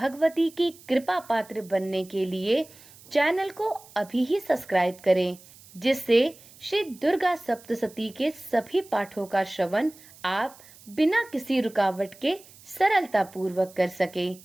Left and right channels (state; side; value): noise; right; hiss, 23 dB below the sound